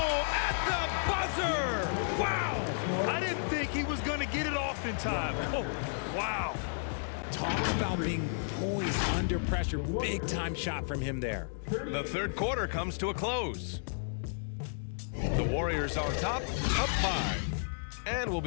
at the buzzer! Wow! I didn't think he was going to get it off in time. Oh, wow. Talk about being poised under pressure. Big time shot from him there. The third quarter comes to a close. The Warriors on top, up 5. And we'll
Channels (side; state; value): right; silent; digital silence